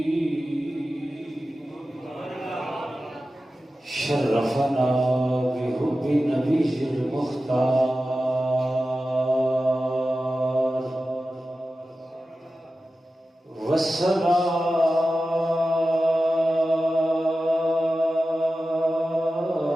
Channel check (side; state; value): both; normal; correlation 0.94